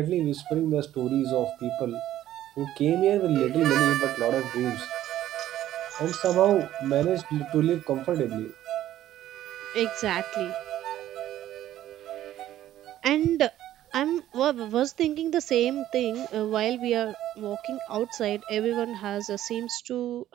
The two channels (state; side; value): quieter; left; 12.9 dB